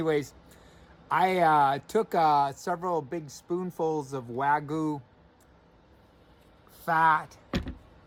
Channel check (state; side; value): identical; both; correlation 1.00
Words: I took several big spoonfuls of Wagyu fat